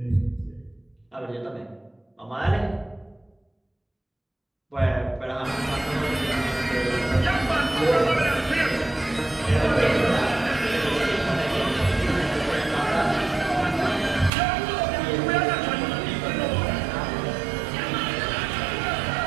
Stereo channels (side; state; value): left; drops out; at 14.3 s